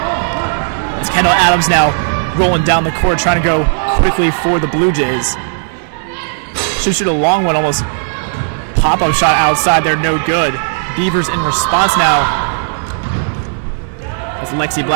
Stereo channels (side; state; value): left; silent; digital silence